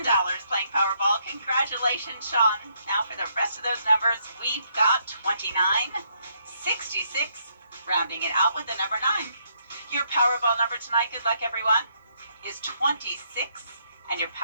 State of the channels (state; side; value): inverted; both; correlation -0.72